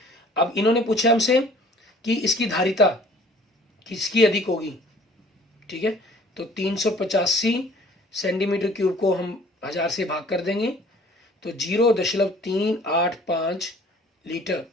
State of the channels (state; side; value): normal; both; correlation 0.52